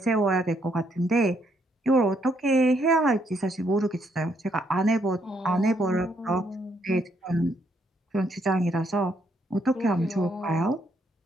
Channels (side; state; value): both; normal; correlation 0.72